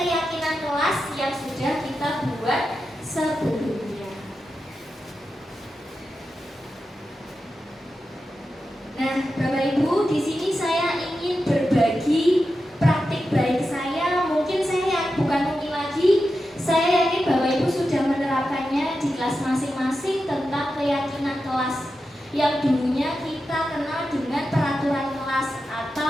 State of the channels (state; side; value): normal; both; correlation 0.90